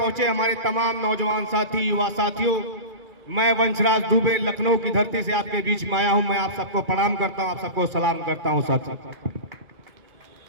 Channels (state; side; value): late; left; 2.3 ms